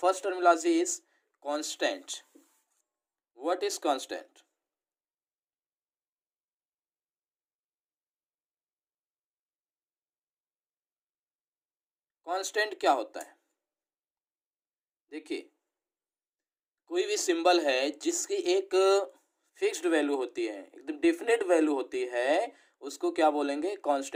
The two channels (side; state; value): both; identical; correlation 1.00